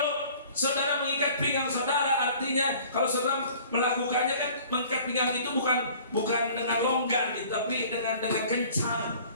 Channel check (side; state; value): both; inverted; correlation -0.50